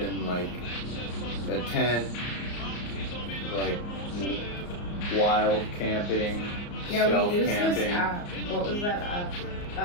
like a tent, like wild camping, Yeah, stealth we used camping. this app. What was that app?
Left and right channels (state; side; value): late; right; 34 ms